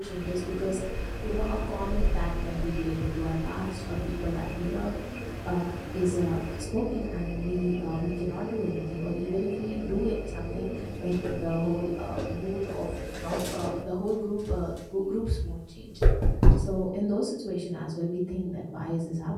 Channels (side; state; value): both; identical; correlation 1.00